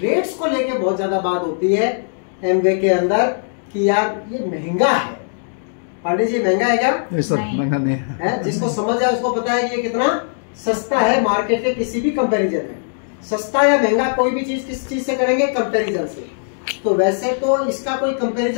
को लेके बहुत ज्यादा बात होती है एमवे के अंदर कि यार ये महंगा है। पांडे जी महंगा है क्या? महंगा नहीं है। जिसको समझ है उसको पता है कि ये कितना सस्ता है मार्केट के किसी भी कंपैरिजन में। सस्ता या महंगा कोई भी चीज किस चीज से करेंगे? कंपैरिजन से। तो वैसे तो इसका कोई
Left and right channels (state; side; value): silent; right; digital silence